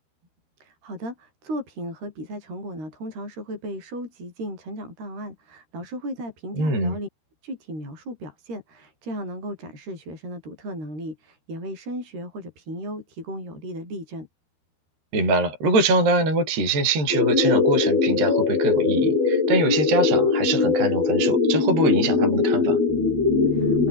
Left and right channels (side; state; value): left; late; 13 ms